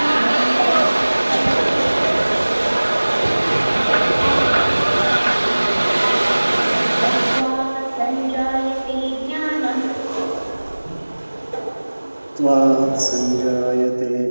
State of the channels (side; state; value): both; inverted; correlation -1.00